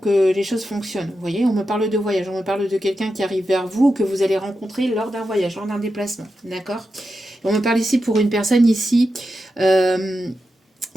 les choses fonctionnent. Vous voyez, on me parle de voyage, on me parle de quelqu'un qui arrive vers vous, que vous allez rencontrer lors d'un voyage, lors d'un déplacement. D'accord ? On me parle ici pour une personne ici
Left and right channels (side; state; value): both; normal; correlation 0.89